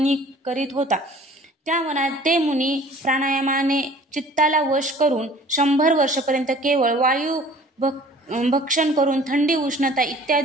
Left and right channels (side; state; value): both; normal; correlation 0.50